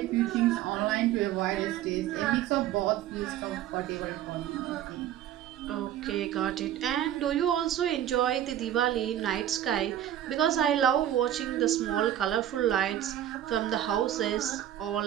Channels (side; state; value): left; quieter; 11.7 dB